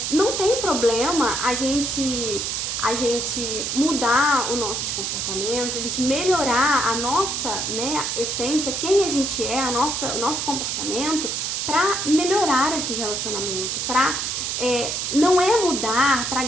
Não tem problema a gente mudar os nossos comportamentos, a gente melhorar a nossa, né, essência, quem a gente é, o nosso comportamento, para melhorar esse relacionamento, não é mudar para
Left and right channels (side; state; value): right; noise; hiss, 2 dB below the sound